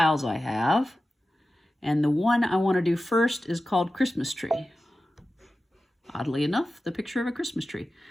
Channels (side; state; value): both; normal; correlation 0.94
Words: I have. And the one I want to do first is called Christmas Tree. Oddly enough, the picture of a Christmas tree.